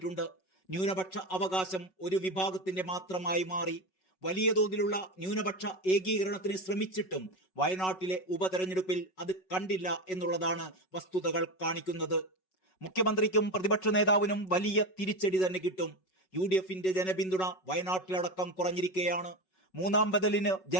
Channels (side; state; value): right; late; 5.4 ms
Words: ന്യൂനപക്ഷ അവകാശം ഒരു വിഭാഗത്തിന്റെ മാത്രമായി മാറി. വലിയ തോതിലുള്ള ന്യൂനപക്ഷ ഏകീകരണത്തിന് ശ്രമിച്ചിട്ടും വയനാട്ടിലെ ഉപതെരഞ്ഞെടുപ്പിൽ അത് കണ്ടില്ല എന്നുള്ളതാണ് വസ്തുതകൾ കാണിക്കുന്നത്. മുഖ്യമന്ത്രിക്കും പ്രതിപക്ഷ നേതാവിനും വലിയ തിരിച്ചടി തന്നെ കിട്ടും. UDF-ന്റെ ജനപിന്തുണ വയനാട്ടിലടക്കം കുറഞ്ഞിരിക്കുകയാണ്. മൂന്നാം ബദലിന്